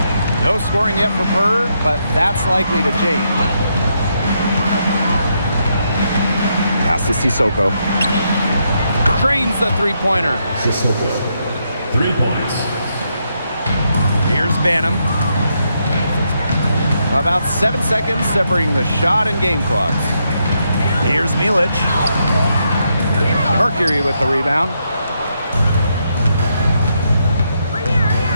No scoring yet from her, but that's likely to change. Pass to Sissoko. Drains the three-pointer. Sissoko. 3 points. Here's Banham. About 7 seconds separating the shot and game clocks. Here's Milic. Mercury with the rebound.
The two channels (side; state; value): both; inverted; correlation -0.79